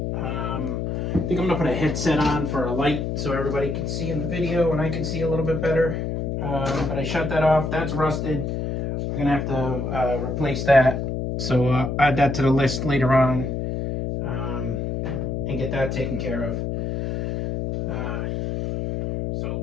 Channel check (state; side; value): noise; left; hum, 2 dB below the sound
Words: I think I'm going to put a headset on for a light so everybody can see in the video and I can see a little bit better. But I shut that off. That's rusted. We're going to have to replace that. So I'll add that to the list later on and get that taken care of. So